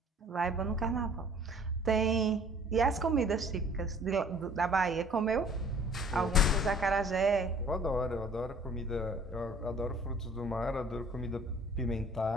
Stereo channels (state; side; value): normal; both; correlation 0.53